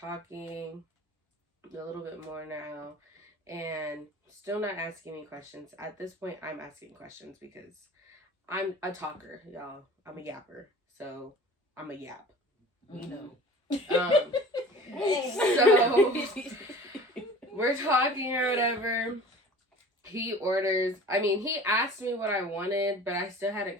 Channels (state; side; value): normal; both; correlation 0.43